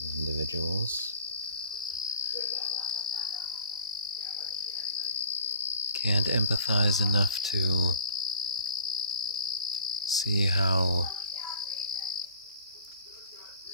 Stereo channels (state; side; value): inverted; both; correlation -0.45